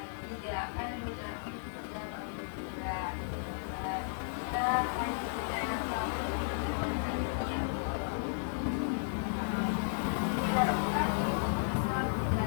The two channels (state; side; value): silent; right; 55 dB below the other